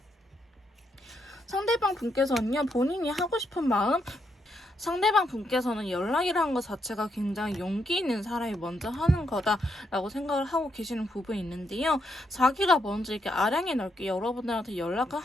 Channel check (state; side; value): normal; both; correlation 0.79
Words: 상대방 분께서는요, 본인이 하고 싶은 마음, 상대방 분께서는 연락이라는 것 자체가 굉장히 용기 있는 사람이 먼저 하는 거다라고 생각을 하고 계시는 부분이 있는데요. 자기가 먼저 이렇게 아량이 넓게 여러분들한테 연락을